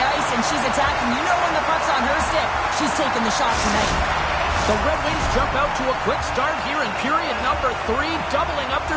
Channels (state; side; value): identical; both; correlation 1.00